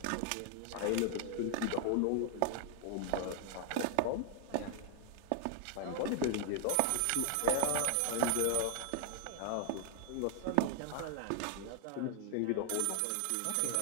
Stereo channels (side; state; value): both; different; correlation 0.00